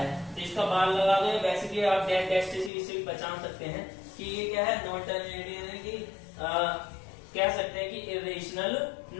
तो इसका बार लगा दो। बेसिकली आप डेट डैश से इससे भी पहचान सकते हैं कि ये क्या है नॉन टर्मिनेटिंग, यानी कि कह सकते हैं कि इरेशनल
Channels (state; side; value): drops out; right; at 2.7 s